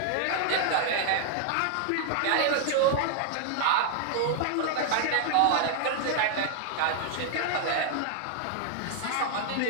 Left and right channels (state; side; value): different; both; correlation 0.00